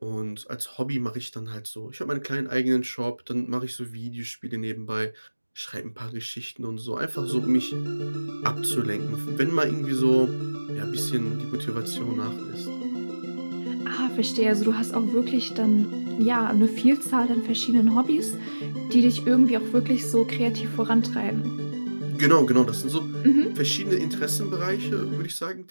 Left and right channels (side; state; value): both; inverted; correlation -1.00